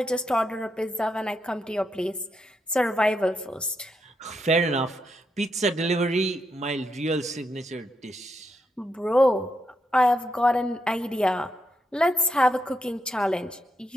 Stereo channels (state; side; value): normal; both; correlation 0.81